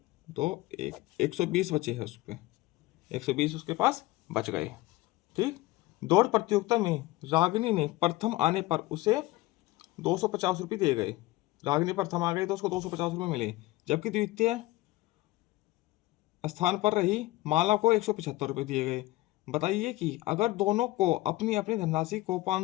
2, 1, 120 बचे हैं उस पर। 120 उसके पास बच गए। ठीक, दौड़ प्रतियोगिता में रागिनी ने प्रथम आने पर उसे 250 रुपये दिए गए। रागिनी प्रथम आ गई तो उसको 250 रुपये मिले, जबकि द्वितीय स्थान पर रही माला को 175 रुपये दिए गए। बताइए कि अगर दोनों को अपनी अपनी धनराशि को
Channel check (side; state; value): right; quieter; 18.9 dB